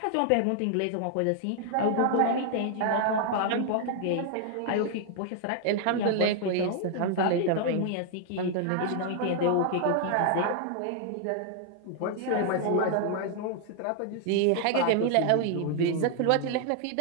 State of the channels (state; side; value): different; both; correlation 0.00